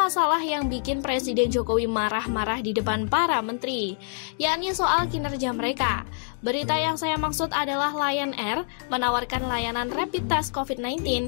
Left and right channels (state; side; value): silent; right; digital silence